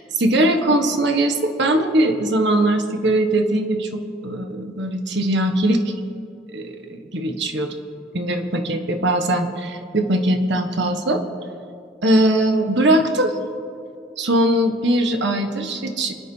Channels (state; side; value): normal; both; correlation 0.52